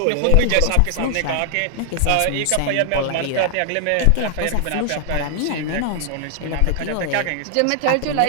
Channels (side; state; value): both; different; correlation 0.00